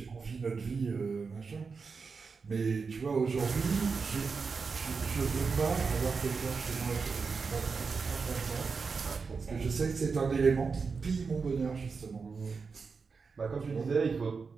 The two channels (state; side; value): quieter; left; 5.0 dB